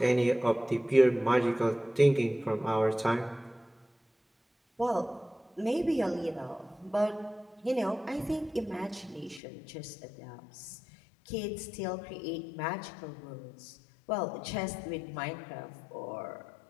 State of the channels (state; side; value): drops out; right; at 9.4 s